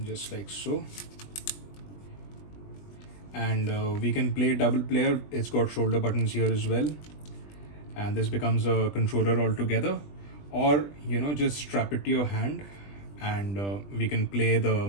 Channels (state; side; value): late; right; 20 ms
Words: Just like so. And we can play double player. It's got shoulder buttons here as well, and this becomes a controller altogether. Or just strap it to your hand, and we can play the